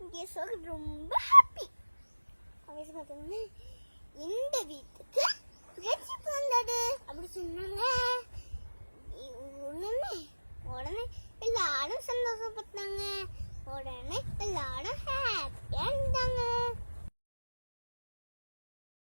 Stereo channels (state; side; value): inverted; both; correlation -1.00